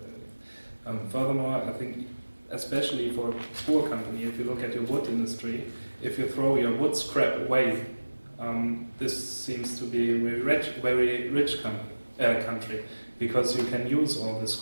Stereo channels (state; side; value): inverted; both; correlation -1.00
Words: Furthermore, I think especially for a poor company, if you look at your wood industry, if you throw your wood scrap away, this seems to be a very rich country, because you can use all this